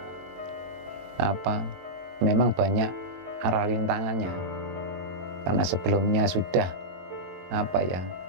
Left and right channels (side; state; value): left; late; 22 ms